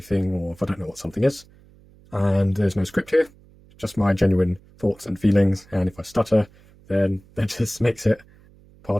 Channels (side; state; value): right; noise; hum, 27 dB below the sound